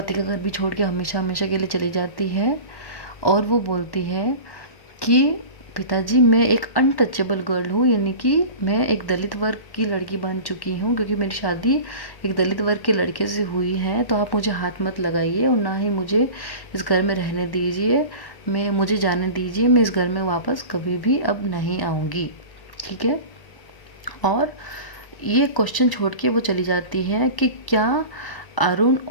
का घर भी छोड़ के हमेशा हमेशा के लिए चली जाती है। और वो बोलती है कि पिताजी मैं एक अनटचेबल गर्ल हूँ, यानी कि मैं एक दलित वर्ग की लड़की बन चुकी हूँ, क्योंकि मेरी शादी एक दलित वर्ग के लड़के से हुई है, तो आप मुझे हाथ मत लगाइए और ना ही मुझे इस घर में रहने दीजिए, मुझे जाने दीजिए, मैं इस घर में वापस कभी भी अब नहीं आऊँगी। ठीक है। और ये क्वेश्चन छोड़ के वो चली जाती है कि क्या अरुण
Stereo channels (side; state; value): right; late; 1.1 ms